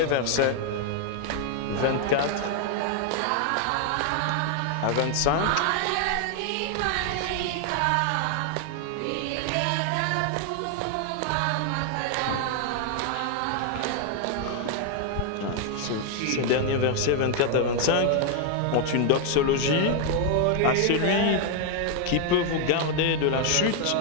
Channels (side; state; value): both; different; correlation 0.00